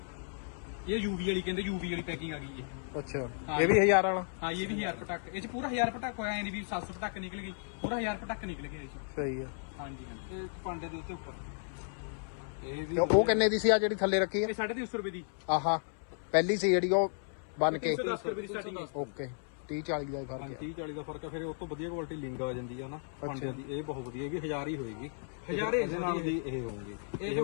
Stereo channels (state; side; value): silent; right; 55 dB below the other